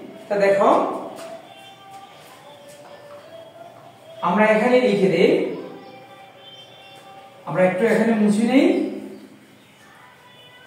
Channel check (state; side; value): identical; both; correlation 1.00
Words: তা দেখো আমরা এখানে লিখে দেই, আমরা একটু এখানে মুছে নেই।